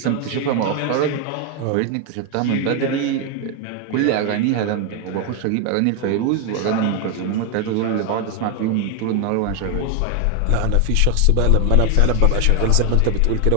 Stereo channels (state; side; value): different; both; correlation 0.01